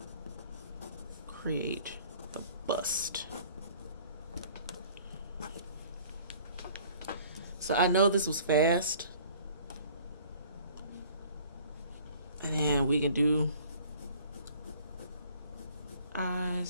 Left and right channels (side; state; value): both; inverted; correlation -0.52